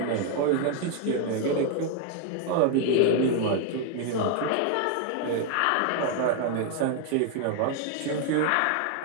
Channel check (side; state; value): both; different; correlation 0.00